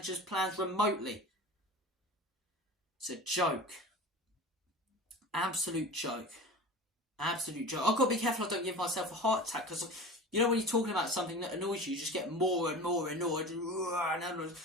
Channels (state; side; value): normal; both; correlation 0.34